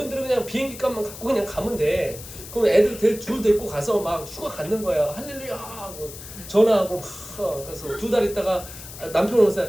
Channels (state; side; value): noise; left; hiss, 14 dB below the sound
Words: 그냥 비행기 값만 갖고 그냥 가면 돼. 그럼 애들 둘 데리고 가서 막 휴가 갖는 거야. 할렐루야 하고 전화하고 막 가서 2달 있다가 남편 오면서